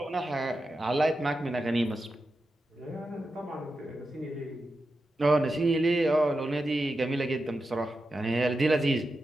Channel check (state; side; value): normal; both; correlation 0.90